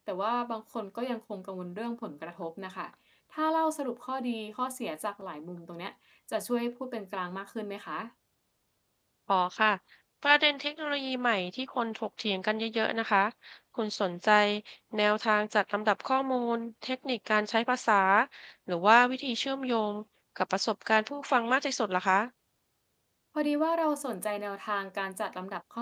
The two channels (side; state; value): both; identical; correlation 1.00